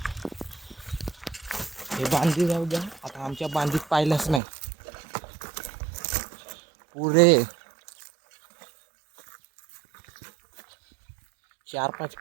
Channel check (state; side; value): drops out; left; at 4.4 s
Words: हे बांधी जाऊ द्या. आता आमच्या बांधीत पाहिलंच नाही. पुरे 4-5